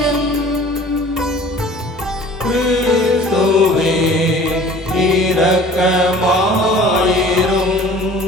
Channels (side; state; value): both; normal; correlation 0.46